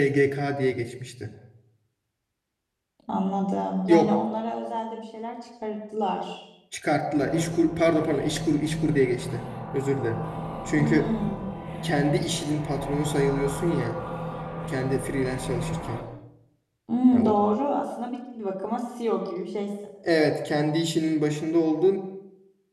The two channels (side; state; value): both; identical; correlation 1.00